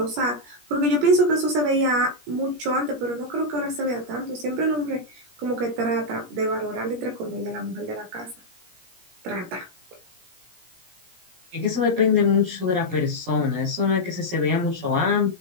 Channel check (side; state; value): left; late; 17 ms